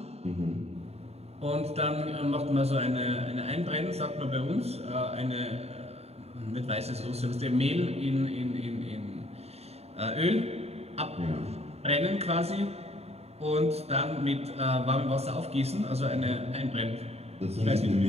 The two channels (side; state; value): left; late; 0.30 ms